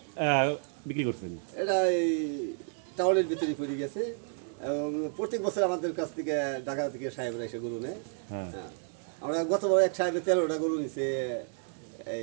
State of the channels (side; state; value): left; silent; 57 dB below the other